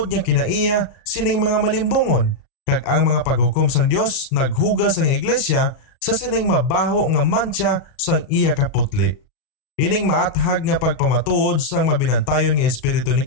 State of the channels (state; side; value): late; right; 37 ms